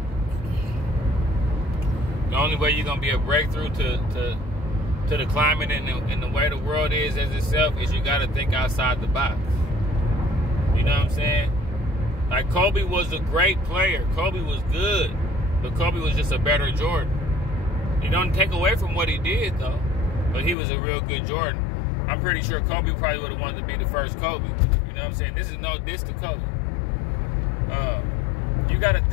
The only way you're gonna be a breakthrough to the climate and the way the world is as itself is you gotta think outside the box. You know what I'm saying? Like Kobe was a great player. Kobe was good, but Kobe was just a better Jordan. You don't take away from what he did though, but he was a real good Jordan. I'm pretty sure Kobe probably would have wanted to be the first Kobe. You know what I'm saying? This is no diss to Kobe. You got to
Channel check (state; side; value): drops out; right; at 20.6 s